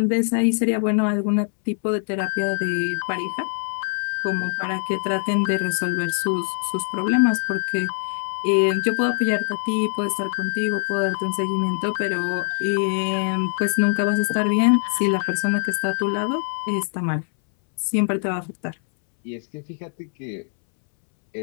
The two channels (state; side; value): silent; right; 63 dB below the other